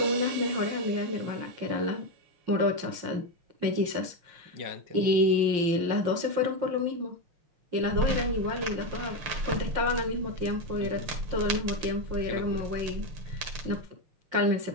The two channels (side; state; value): left; late; 5.7 ms